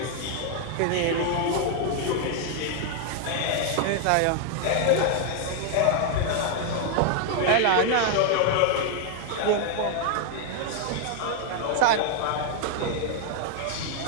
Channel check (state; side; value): different; both; correlation 0.00